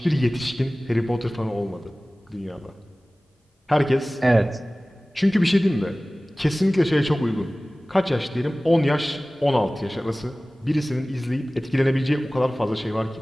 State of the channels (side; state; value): both; normal; correlation 0.98